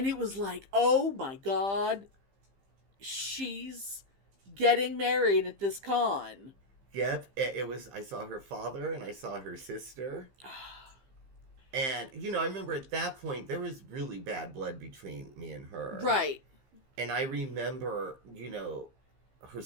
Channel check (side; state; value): left; late; 15 ms